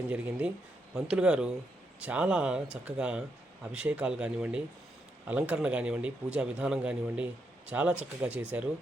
జరిగింది. పంతులు గారు చాలా చక్కగా అభిషేకాలు కానివ్వండి, అలంకరణ కానివ్వండి, పూజా విధానం కానివ్వండి చాలా చక్కగా చేశారు.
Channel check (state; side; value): normal; both; correlation 0.80